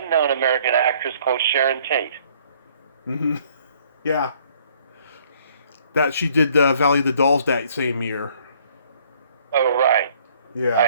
American actress called Sharon Tate. Mm-hmm. Yeah. That she did Valley of the Dolls that same year. Oh, right. Yeah.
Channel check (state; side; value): inverted; both; correlation -0.61